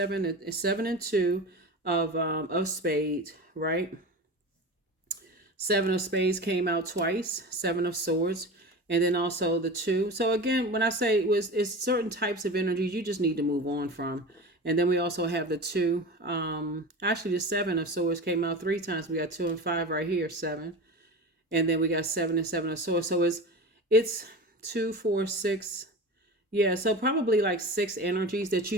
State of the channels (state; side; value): normal; both; correlation 0.31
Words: and 2 of spades, right? 7 of spades came out twice, 7 of swords, and then also the 2. So again, when I say it's certain types of energies you just need to move on from. And then we also have the 2. Actually, the 7 of swords came out 3 times. We got 2 and 5 right here, 7. And then we got 7 and 7 of swords. So it's 2, 4, 6. Yeah, so probably like 6 energies that